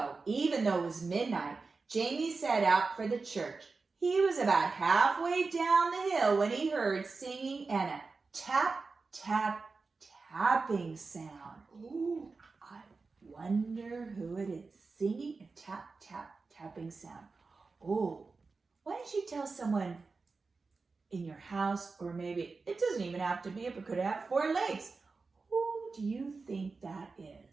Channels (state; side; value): quieter; left; 4.2 dB